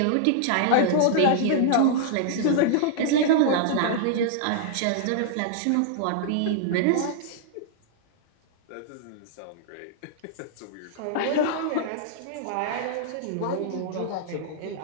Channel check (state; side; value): different; both; correlation -0.01